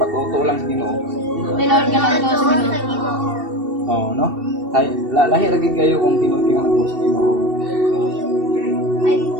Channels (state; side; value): late; left; 2.7 ms